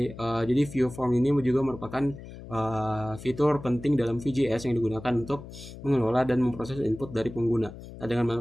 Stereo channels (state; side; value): noise; left; hum, 14 dB below the sound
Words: view form ini juga merupakan fitur penting dalam VJS yang digunakan untuk mengelola dan memproses input dari pengguna. Nah, dengan